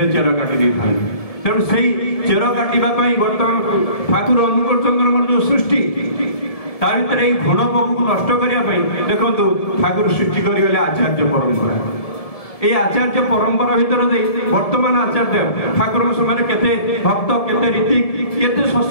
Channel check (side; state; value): right; late; 1.7 ms